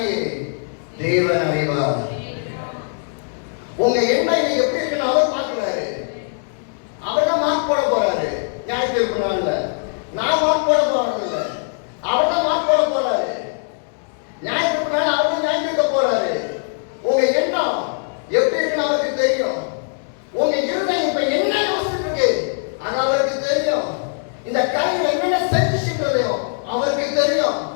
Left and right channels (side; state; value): right; silent; digital silence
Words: தேவன் அறிவார். உங்க எண்ணம் எப்படி இருக்குன்னு அவர் பார்க்கிறாரு. அவர் தான் மார்க் போட போறாரு. ஞாயிற்றுக்கிழமை நாள்ல நான் மார்க் போட போறது இல்ல, அவர் தான் மார்க் போட போறாரு. ஞாயிற்றுக்கிழமை நாள் அவர் தான் ஞாயிற்றுக்க போறாரு. உங்க எண்ணம் எப்படி இருக்குன்னு அவருக்கு தெரியும். உங்க இருதயம் இப்ப என்ன யோசிச்சுட்டு இருக்கு அது அவருக்கு தெரியும். இந்த கையில் என்னென்ன செஞ்சுன்றதையும் அவருக்கு தெரியும்.